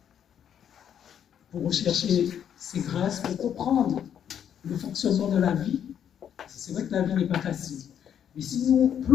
pour rechercher ses grâces, pour comprendre le fonctionnement de la vie. C'est vrai que la vie n'est pas facile. Mais si nous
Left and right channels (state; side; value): quieter; right; 9.1 dB